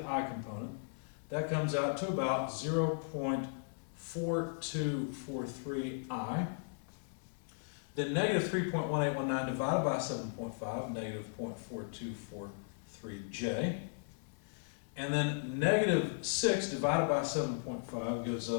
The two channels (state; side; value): silent; right; digital silence